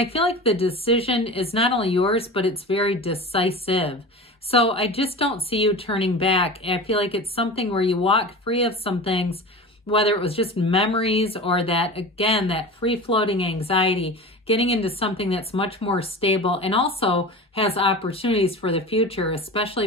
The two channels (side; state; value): both; normal; correlation 0.32